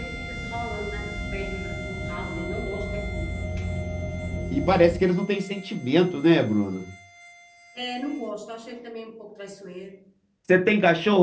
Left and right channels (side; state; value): both; identical; correlation 1.00